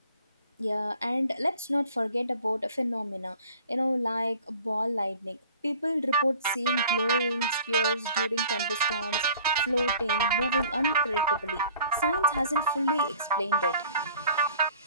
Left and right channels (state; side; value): inverted; both; correlation -0.50